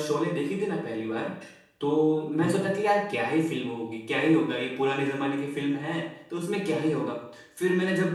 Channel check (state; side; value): identical; both; correlation 1.00